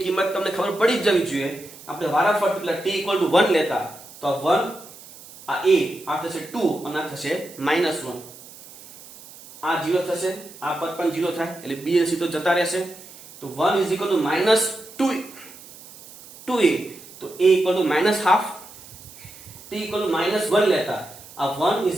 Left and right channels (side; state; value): right; noise; hiss, 19 dB below the sound